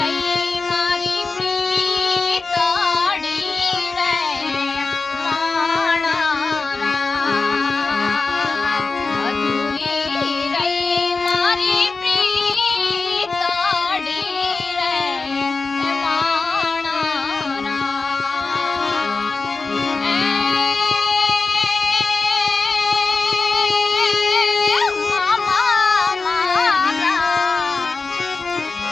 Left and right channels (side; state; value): right; quieter; 4.0 dB